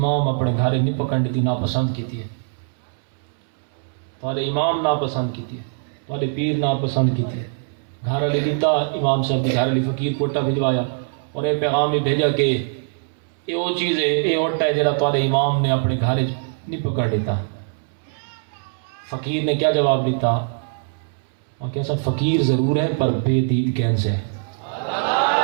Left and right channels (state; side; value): silent; left; 64 dB below the other